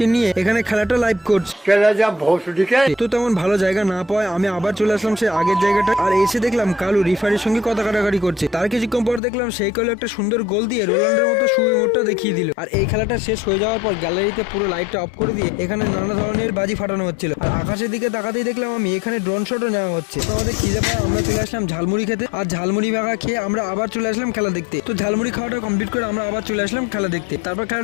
নিয়ে এখানে খেলাটা লাইভ করছে। তো তেমন ভালো জায়গা না পাওয়ায় আমি আবার চলে আসলাম সেই আগের জায়গাটা, আর এসে দেখলাম কালু রিফারির সঙ্গে কথা কাটাকাটি করছে। তার কিছুক্ষণ পর দেখলাম সেই কালু একটা সুন্দর গোল দিয়ে রোনাল্ডোর মতো সুইমোটটা দেখিয়ে দিল। আর এই খেলাটা শেষ হয়ে যাওয়ার পর গ্যালারিতে পুরো লাইটটা অফ করে দিয়ে এখানে নানা ধরনের বাজি ফাটানো হচ্ছিল। আর আকাশের দিকে তাকাতেই দেখলাম আমি এখানে ড্রোন শটও নেওয়া হচ্ছে। তো আমাদের খিদে পায়, আমরা চলে আসলাম ঝালমুড়ি খেতে। আর ঝালমুড়ি ভাগা খেয়ে আমরা আবার চলে আসলাম খেলা দেখতে। তো ঝালমুড়ি খাওয়াটা কমপ্লিট করে আমরা আবার চলে আসলাম খেলা দেখতে। তারপর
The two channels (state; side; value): drops out; right; at 9.2 s